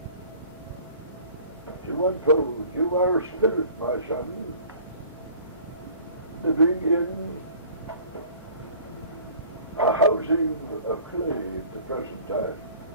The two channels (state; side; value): inverted; both; correlation -0.48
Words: to unfold. You are a spirit, my son, living in a housing of clay at the present time.